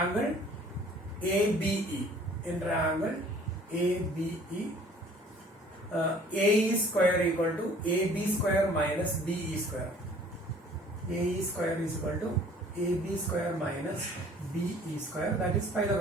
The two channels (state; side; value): normal; both; correlation 0.53